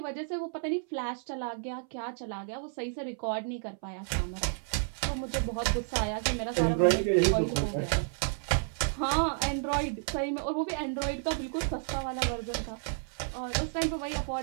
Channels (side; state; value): left; silent; 57 dB below the other